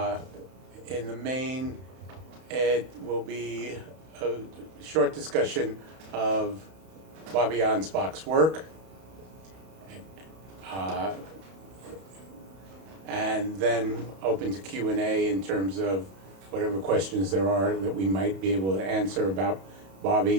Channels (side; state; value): left; late; 31 ms